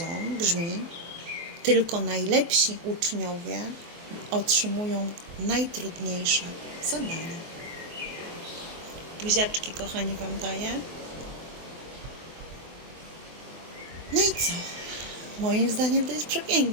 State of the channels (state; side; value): late; left; 24 ms